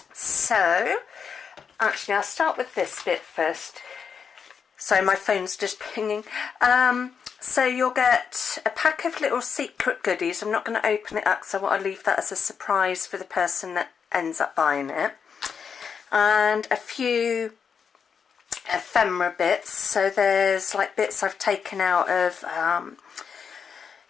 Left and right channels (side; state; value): right; quieter; 6.6 dB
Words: So, actually I'll start with this bit first. So my phone's just pinging. So you'll get a pack of little secret goodies. I'm not going to open it up because I want to leave that as a surprise for the person that ends up buying it. And a few ephemera bits. So there's like bits I've taken out of